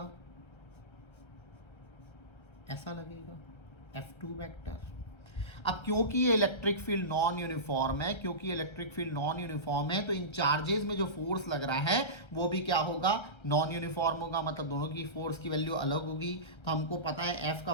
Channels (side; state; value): right; late; 1.3 ms